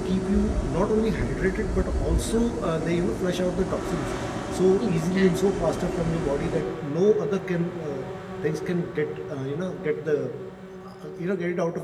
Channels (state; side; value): identical; both; correlation 1.00